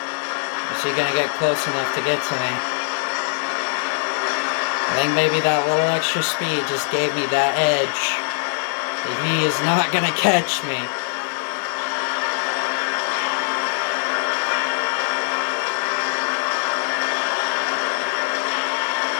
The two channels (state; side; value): silent; right; digital silence